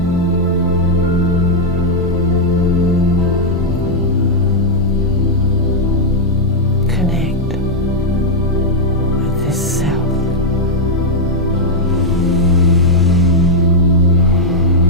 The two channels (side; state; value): both; normal; correlation -0.02